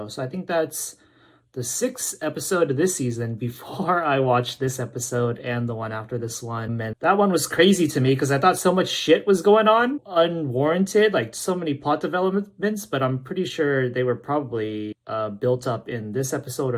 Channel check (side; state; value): both; identical; correlation 1.00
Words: so I think that's the 6th episode of this season before I watched this episode and the one after this one. And that one was crazy to me because I thought so much shit was going on, unwarranted, like so many plot developments, but I'm pretty sure they were probably built up in this episode